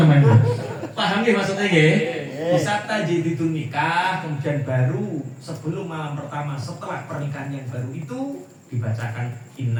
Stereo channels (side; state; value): both; identical; correlation 1.00